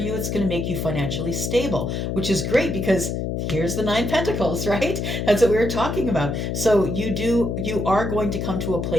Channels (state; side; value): noise; left; hum, 2 dB below the sound